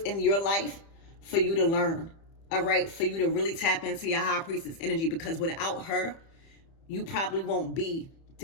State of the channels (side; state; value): right; late; 30 ms